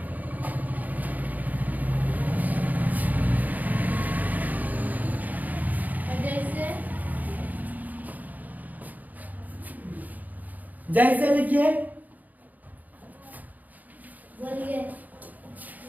जैसे लिखिए। बोलिए।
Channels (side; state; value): left; late; 0.080 ms